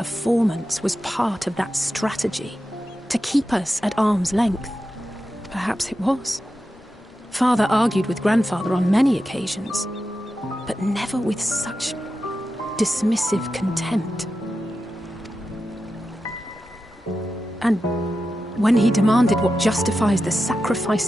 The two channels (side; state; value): both; normal; correlation 0.91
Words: was part of that strategy, to keep us at arm's length. Perhaps it was. Father argued with Grandfather on many occasions, but never with such dismissive contempt. And when he demanded what justifies the